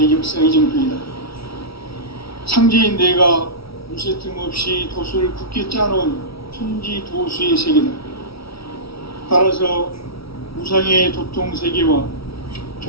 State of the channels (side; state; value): right; late; 0.76 ms